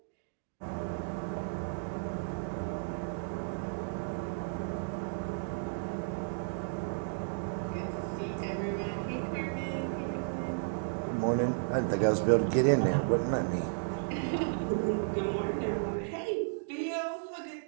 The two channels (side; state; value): left; silent; digital silence